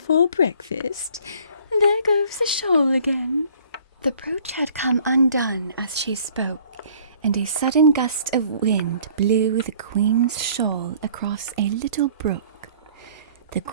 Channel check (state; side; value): inverted; both; correlation -0.54